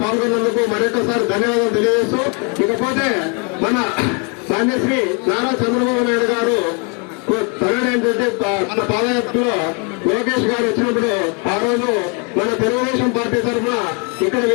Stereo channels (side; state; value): right; quieter; 35.6 dB